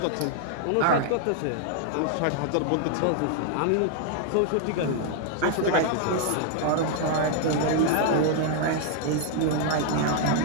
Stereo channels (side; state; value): both; different; correlation 0.00